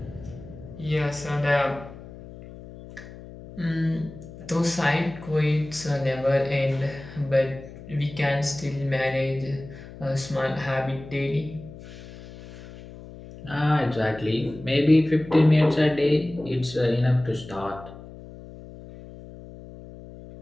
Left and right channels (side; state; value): left; noise; hum, 16 dB below the sound